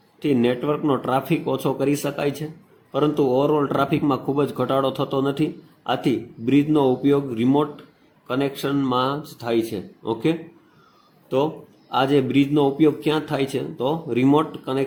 નેટવર્કનો ટ્રાફિક ઓછો કરી શકાય છે, પરંતુ ઓવરઓલ ટ્રાફિકમાં ખૂબ જ ઘટાડો થતો નથી. આથી બ્રિજનો ઉપયોગ રિમોટ કનેક્શનમાં જ થાય છે. ઓકે, તો આ જે બ્રિજનો ઉપયોગ ક્યાં થાય છે? તો રિમોટ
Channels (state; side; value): identical; both; correlation 1.00